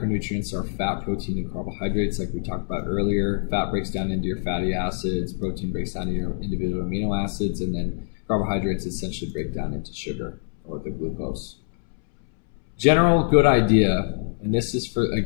are fat, protein, and carbohydrates, like we talked about earlier. Fat breaks down into your fatty acids, protein breaks down into your individual amino acids, and then carbohydrates essentially break down into sugar or the glucose. General good idea, and this is for,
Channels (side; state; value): right; silent; 62 dB below the other